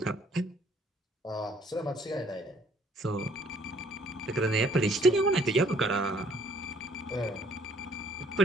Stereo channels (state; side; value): normal; both; correlation 0.61